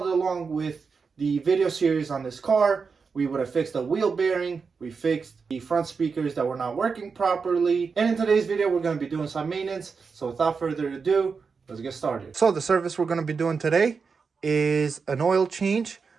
along with the video series on this car, we would have fixed the wheel bearing, we fixed the front speakers that were not working properly, and in today's video we're going to be doing some maintenance. So without further ado, let's get started. So the service we're going to be doing today is an oil change.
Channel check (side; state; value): left; quieter; 5.2 dB